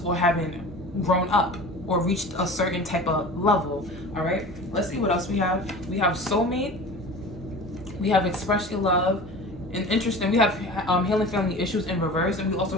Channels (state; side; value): normal; both; correlation 0.37